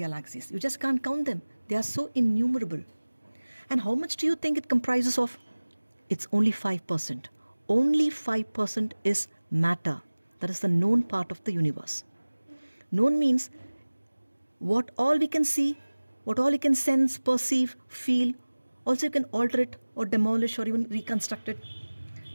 You just can't count them. They are so innumerable. And how much do you think it comprises of? It's only 5%. Only 5% is matter. That is the known part of the universe. Known means what all we can see, what all we can sense, perceive, feel. Also you can alter it or demolish or even reconstruct it.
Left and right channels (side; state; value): both; inverted; correlation -1.00